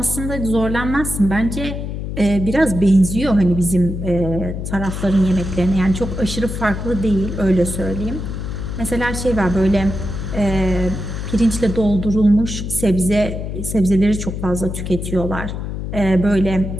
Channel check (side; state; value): left; noise; hum, 5 dB below the sound